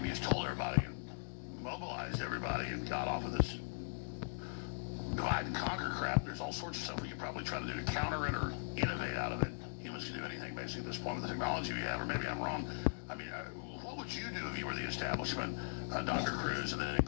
we just told everybody and mobilized everybody and got off of this divide and conquer crap. There's all sorts of stuff we could probably try to do to counter it or innovate out of it. Humans can do anything, basically, at this point with the technology we have, or maybe I'm wrong. I mean, what would you do if you were the establishment, Dr. Cruz? And then in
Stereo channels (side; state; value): right; silent; digital silence